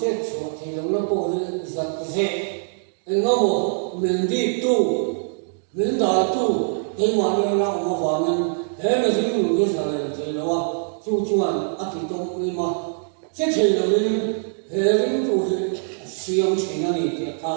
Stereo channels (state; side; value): silent; left; digital silence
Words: rồi thì nó có giật dễ, anh nó một mình đi tu, mình đã tu, thế mà như nó mà vào mình, thế mà chỉ dùng cái sao này thì nó chu chuan, thì trong cái mà, chết thì là mình, thế mình tu thì siêu chỉ nó này thì